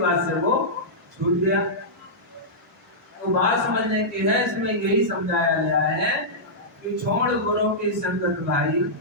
से वो छूट गया। तो बात समझने की है, इसमें यही समझाया गया है कि छोड़ गुरु की संगत भाई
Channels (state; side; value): normal; both; correlation -0.12